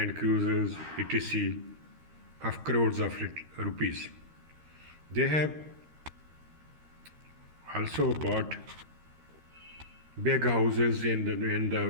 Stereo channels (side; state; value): left; late; 13 ms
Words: Cruisers, etc., of crores of rupees. They have also bought big houses in